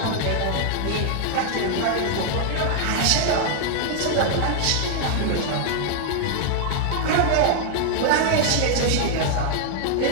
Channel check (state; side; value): different; both; correlation 0.00